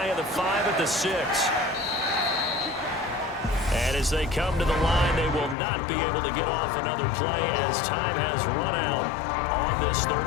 of the 5 at the 6. And as they come to the line, they will not be able to get off another play as time has run out on this third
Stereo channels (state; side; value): drops out; right; at 5.6 s